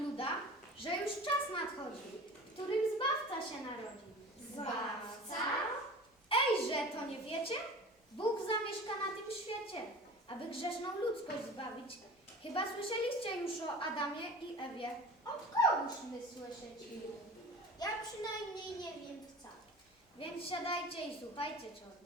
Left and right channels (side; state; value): both; normal; correlation 0.38